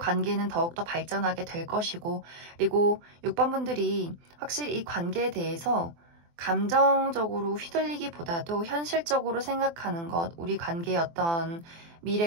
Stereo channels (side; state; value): left; late; 24 ms